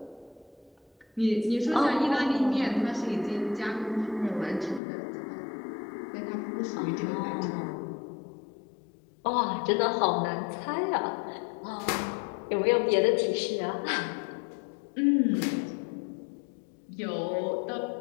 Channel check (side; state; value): right; drops out; at 4.8 s